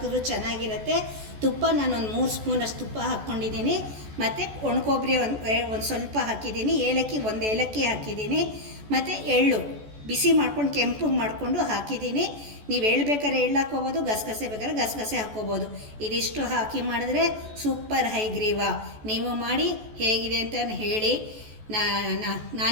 ಚೆನ್ನಾಗಿರುತ್ತೆ. ತುಪ್ಪ ನಾನು ಒಂದು 3 ಸ್ಪೂನಷ್ಟು ತುಪ್ಪ ಹಾಕ್ಕೊಂಡಿದ್ದೀನಿ. ಮತ್ತು ಒಣಕೊಬ್ಬರಿ ಒಂದು ಸ್ವಲ್ಪ ಹಾಕಿದ್ದೀನಿ. ಏಲಕ್ಕಿ 1 ಏಲಕ್ಕಿ ಹಾಕಿದ್ದೀನಿ. ಮತ್ತು ಎಳ್ಳು ಬಿಸಿ ಮಾಡ್ಕೊಂಡು ಕೆಂಪಗೆ ಮಾಡಿಕೊಂಡು ಹಾಕಿದ್ದೀನಿ. ನೀವು ಎಳ್ಳು ಬೇಕಾದ್ರೆ ಎಳ್ಳು ಹಾಕ್ಕೋಬೋದು, ಗಸಗಸೆ ಬೇಕಾದ್ರೆ ಗಸಗಸೆ ಹಾಕ್ಕೋಬೋದು. ಇದಿಷ್ಟು ಹಾಕಿ ಮಾಡಿದ್ರೆ ಸೂಪರ್ ಹೈಗ್ರೀವ. ನೀವು ಮಾಡಿ ಹೇಗಿದೆ ಅಂತ ಹೇಳಿ.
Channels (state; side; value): late; left; 14 ms